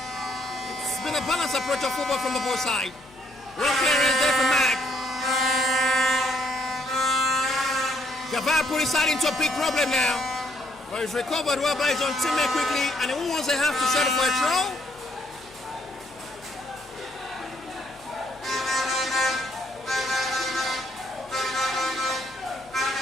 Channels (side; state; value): left; noise; hum, 26 dB below the sound